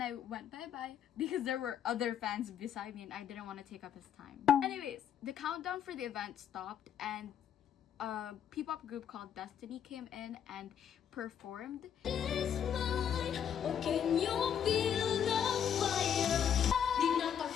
I went bye-bye because there were other fans beside me and I didn't want to take up his time. Anyways, the countdown for the event stopped and a P-pop group called Destiny came in and performed.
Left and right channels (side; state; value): right; quieter; 8.8 dB